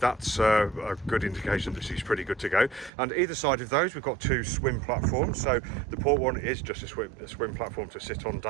a good indication that she's pretty good to go. And either side of those we've got two swim platforms. So the port one is just a swim platform to sit on,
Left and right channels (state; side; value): drops out; left; at 2.9 s